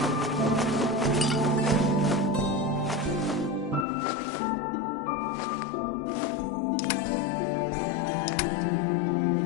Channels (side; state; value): right; drops out; at 3.9 s